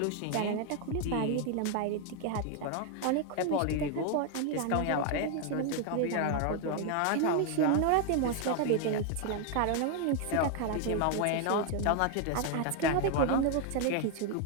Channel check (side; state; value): both; different; correlation 0.00